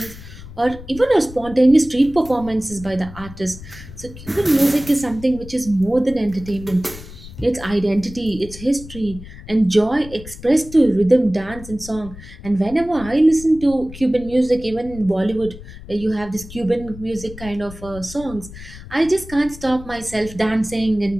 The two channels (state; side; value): noise; left; rumble, 15 dB below the sound